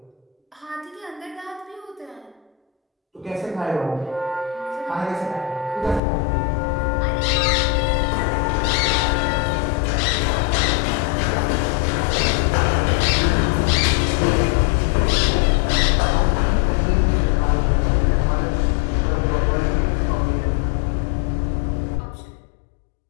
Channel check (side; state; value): right; drops out; at 6.0 s